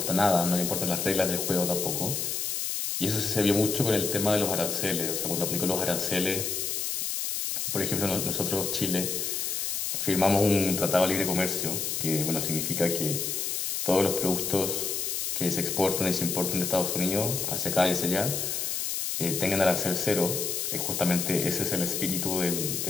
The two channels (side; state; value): left; noise; hiss, 1 dB below the sound